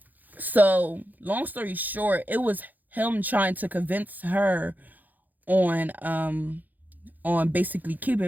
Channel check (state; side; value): late; left; 0.084 ms